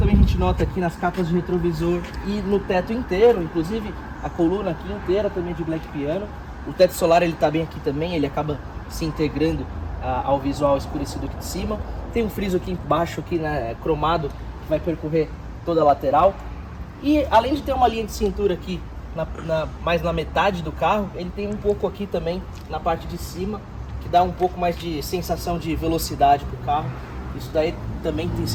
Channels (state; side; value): identical; both; correlation 1.00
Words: a gente nota aqui nas capas de retrovisor e no teto inteiro, inclusive a coluna aqui inteira também de Black Piano. O teto solar ele tá bem aqui também, ele acaba se integrando ao visual escurecido aqui de cima. Tem um friso aqui embaixo, aqui, né, cromado, que vai percorrer toda a lateral. E além de ter uma linha de cintura aqui mais na metade do carro, ele tem um pouco aqui também na parte de cima, que dá um pouco mais de sensação de velocidade pro carro. Isso daí também tem